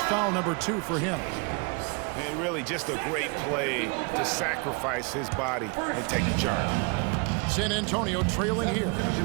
foul number 2 for him. And really just a great play to sacrifice his body and take the charge. San Antonio trailing here.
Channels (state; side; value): quieter; left; 31.9 dB